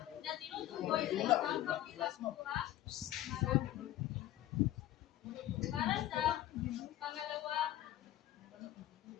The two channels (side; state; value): right; quieter; 13.7 dB